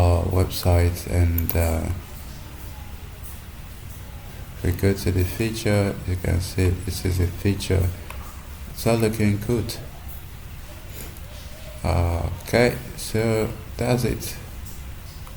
website, and if we go to the feature, you can see this is a feature. It's all looking good. Okay, so that's it.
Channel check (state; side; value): identical; both; correlation 1.00